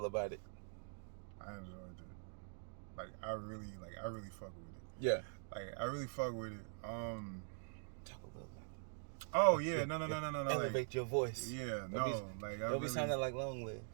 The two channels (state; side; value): silent; left; digital silence